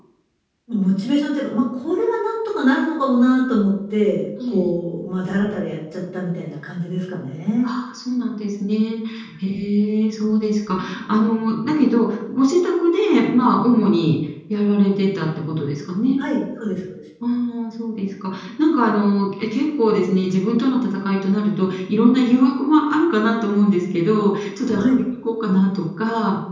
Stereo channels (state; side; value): identical; both; correlation 1.00